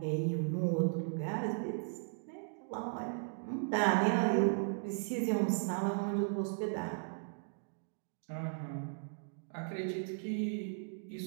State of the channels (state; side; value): silent; left; digital silence